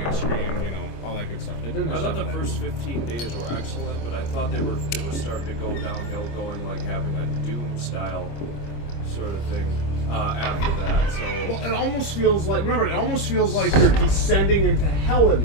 screen, you know, all that good stuff. They didn't. I thought the first 15 days were excellent, but I thought it was starting to go downhill, going like having a Doom style sort of thing. After that, so... Well, it almost feels like... Remember, it almost feels like you're descending into hell in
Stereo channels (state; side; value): late; right; 25 ms